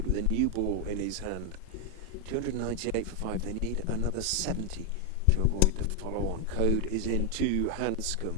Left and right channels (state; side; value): different; both; correlation 0.01